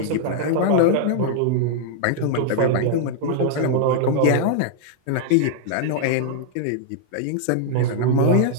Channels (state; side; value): different; both; correlation -0.01